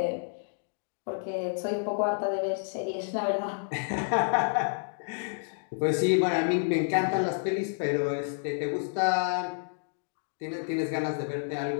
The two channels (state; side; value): silent; right; digital silence